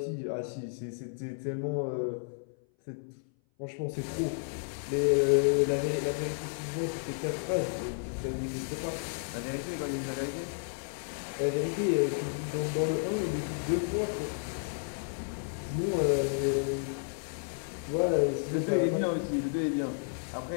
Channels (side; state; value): right; silent; 56 dB below the other